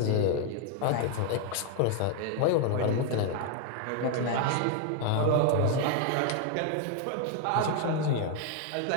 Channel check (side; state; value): both; different; correlation 0.00